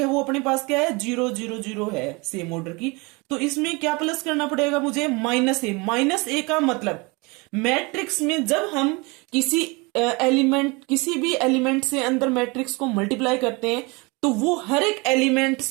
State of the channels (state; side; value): quieter; left; 27.3 dB